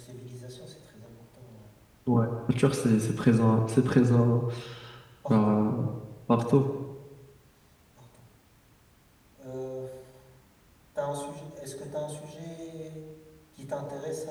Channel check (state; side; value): identical; both; correlation 1.00